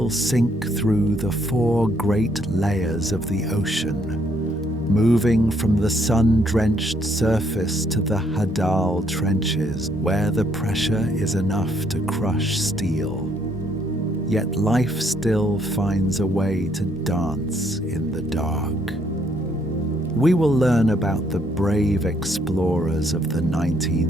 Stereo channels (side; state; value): both; normal; correlation 0.69